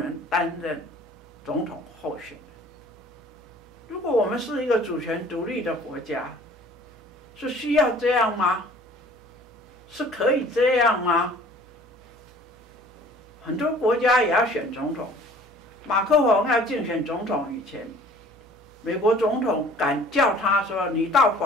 担任总统候选人。如果我们是一个主权独立的国家，是需要这样吗？是可以这样吗？很多国家也要选总统。马克宏要竞选总统以前，美国总统敢叫他说：“你到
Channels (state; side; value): normal; both; correlation 0.51